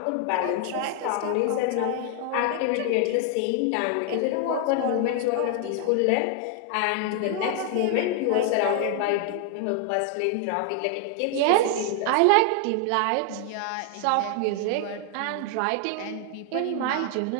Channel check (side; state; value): both; different; correlation 0.00